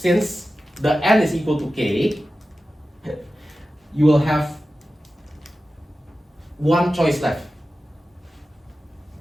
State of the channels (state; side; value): normal; both; correlation 0.94